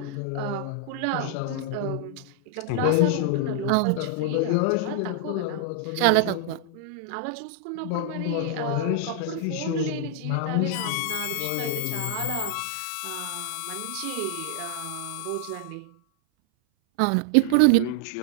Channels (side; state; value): both; different; correlation -0.01